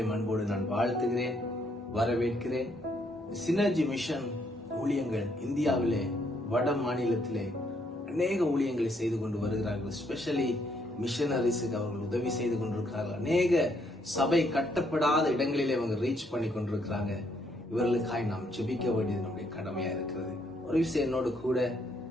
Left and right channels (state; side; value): normal; both; correlation 0.71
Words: அன்போடு நான் வாழ்த்துகிறேன், வரவேற்கிறேன். சினர்ஜி மிஷன் ஊழியங்கள் இந்தியாவிலே வட மாநிலத்திலே அநேக ஊழியங்களை செய்து கொண்டு வருகிறார்கள். ஸ்பெஷலி மிஷனரிஸுக்கு அவர்கள் உதவி செய்து கொண்டிருக்கிறார்கள். அநேக சபை கட்டப்படாத இடங்களிலே அவங்க ரீச் பண்ணி கொண்டிருக்கிறாங்க. இவர்களுக்காய் நாம் ஜெபிக்க வேண்டியது நம்முடைய கடமையா இருக்கிறது. ஒரு விஷயம் என்னோடு கூட